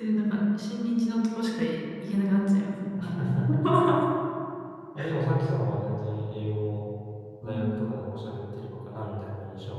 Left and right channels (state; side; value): identical; both; correlation 1.00